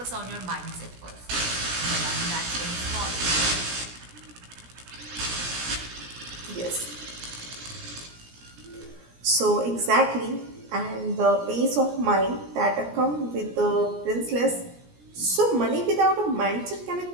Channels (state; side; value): late; left; 17 ms